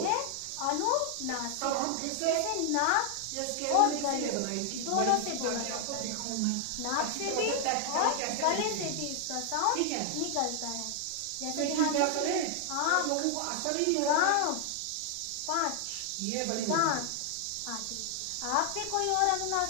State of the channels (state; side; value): different; both; correlation 0.00